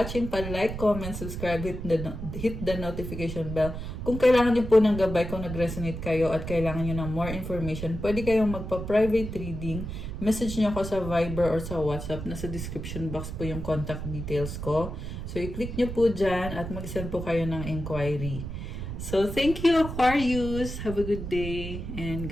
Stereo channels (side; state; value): right; noise; rumble, 7 dB below the sound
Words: Pa-like, comment, subscribe, hit the notification bell. Kung kailangan niyo po ng gabay, kung nag-resonate kayo at kailangan niyo ng more information, pwede kayong magpa-private reading. Message niyo ako sa Viber or sa WhatsApp. Nasa description box po yung contact details ko. So, i-click niyo po dyan at mag-send po kayo ng inquiry. So, thank you Aquarius. Have a good day and